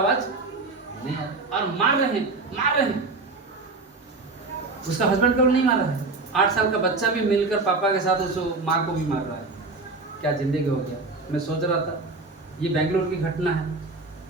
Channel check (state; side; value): quieter; left; 3.6 dB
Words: नहीं है, और मार रहे हैं। उसका हस्बैंड को नहीं मार रहा है, 8 साल का बच्चा भी मिलकर पापा के साथ उस माँ को भी मार रहा है। क्या जिंदगी हो गया। मैं सोच रहा था ये बेंगलोर की घटना है,